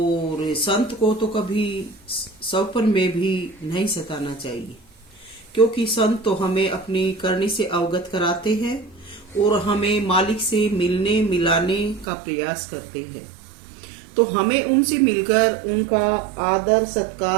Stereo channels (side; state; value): left; drops out; at 12.1 s